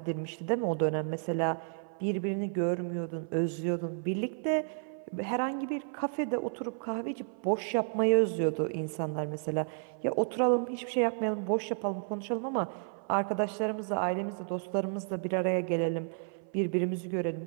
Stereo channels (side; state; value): left; silent; 56 dB below the other